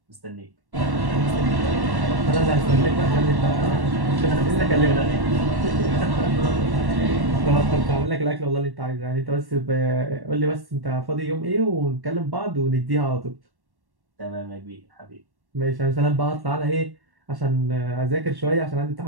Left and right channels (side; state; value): left; late; 1.1 ms